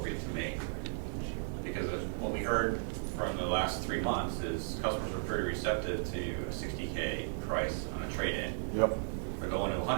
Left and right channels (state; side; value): silent; left; digital silence